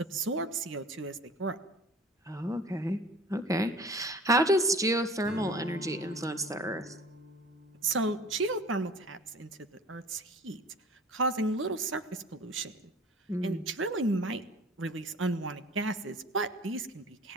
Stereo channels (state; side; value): normal; both; correlation 0.44